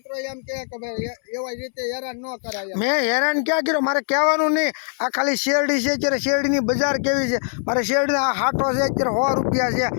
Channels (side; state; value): right; silent; 64 dB below the other